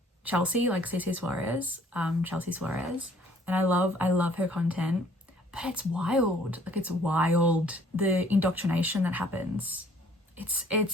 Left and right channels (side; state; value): both; normal; correlation 0.59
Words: Chelsea, like CC Suarez, Chelsea Suarez, and I love her content, but it's wild. Like, it's wild, the indoctrination that happens. It's